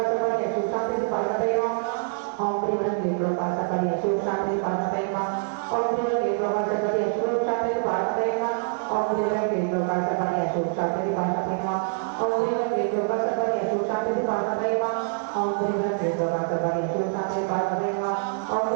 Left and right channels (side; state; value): left; silent; digital silence